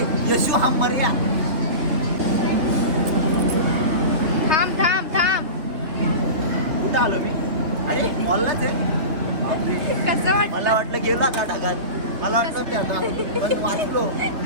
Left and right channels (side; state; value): left; late; 3.6 ms